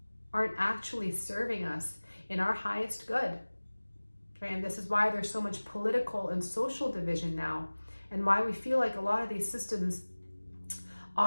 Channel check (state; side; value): inverted; both; correlation -1.00